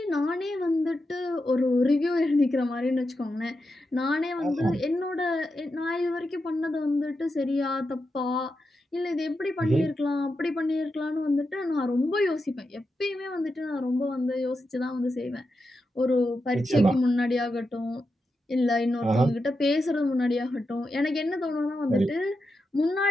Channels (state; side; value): normal; both; correlation 0.88